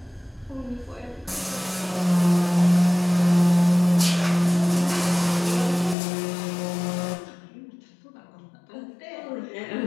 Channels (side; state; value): right; drops out; at 6.0 s